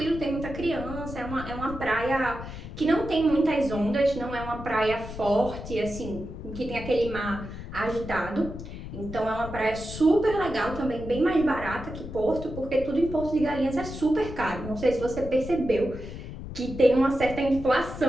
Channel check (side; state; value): left; noise; rumble, 10 dB below the sound